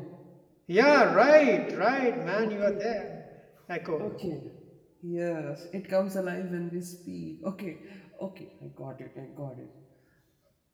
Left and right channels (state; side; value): identical; both; correlation 1.00